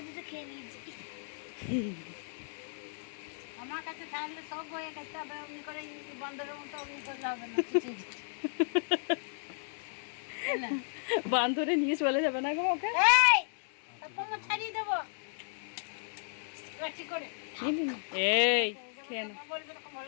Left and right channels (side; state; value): right; silent; digital silence